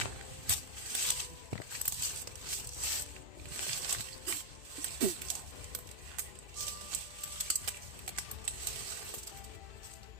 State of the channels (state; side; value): late; left; 2.6 ms